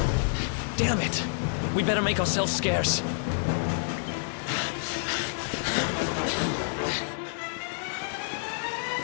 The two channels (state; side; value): silent; right; digital silence